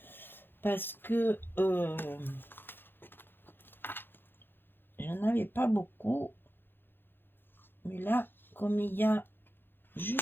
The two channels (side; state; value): right; late; 0.10 ms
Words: Parce que j'en avais pas beaucoup. Mais là, comme il y a